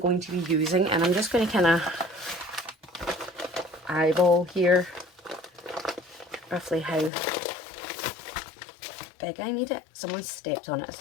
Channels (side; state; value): right; drops out; at 7.1 s